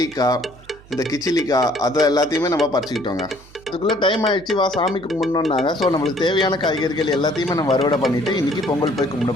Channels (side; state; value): right; noise; hum, 24 dB below the sound